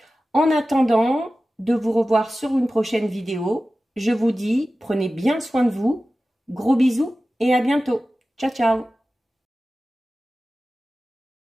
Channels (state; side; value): normal; both; correlation 0.95